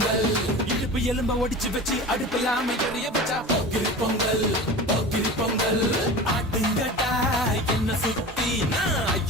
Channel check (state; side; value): normal; both; correlation 0.34